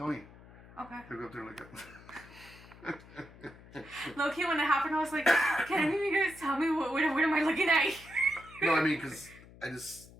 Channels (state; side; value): noise; left; hum, 21 dB below the sound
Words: Okay. He'll go up there and look at Low key, when it happened, I was like, can any of you guys tell me what am I looking at? No, I mean, because